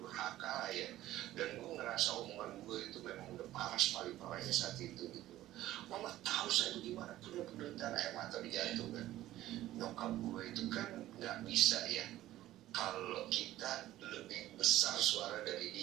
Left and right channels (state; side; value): quieter; left; 14.7 dB